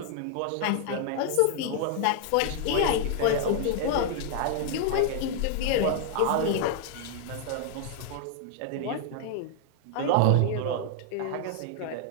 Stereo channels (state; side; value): different; both; correlation -0.01